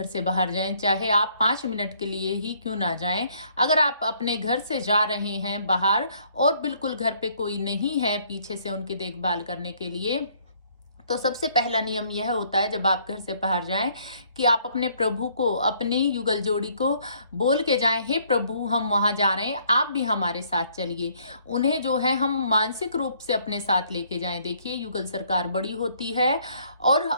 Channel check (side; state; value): both; inverted; correlation -0.64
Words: से बाहर जाएं, चाहे आप 5 मिनट के लिए ही क्यों ना जाएं, अगर आप अपने घर से जा रहे हैं बाहर और बिल्कुल घर पे कोई नहीं है पीछे से उनकी देखभाल करने के लिए, तो सबसे पहला नियम यह होता है जब आप घर से बाहर जाएं कि आप अपने प्रभु को, अपनी युगल जोड़ी को बोल के जाएं, हे प्रभु हम वहां जा रहे हैं, आप भी हमारे साथ चलिए। उन्हें जो है हम मानसिक रूप से अपने साथ लेके जाएं। देखिए, युगल सरकार बड़ी होती है और